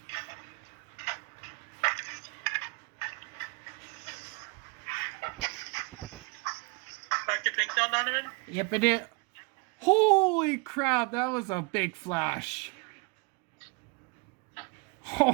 Back to pink now, Donovan? Yep, it is. Holy crap, that was a big flash. Oh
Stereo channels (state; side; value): quieter; left; 30.3 dB